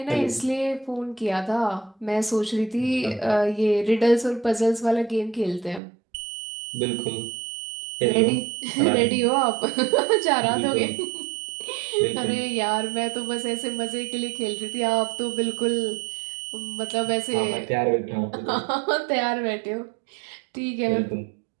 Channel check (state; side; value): drops out; left; at 5.8 s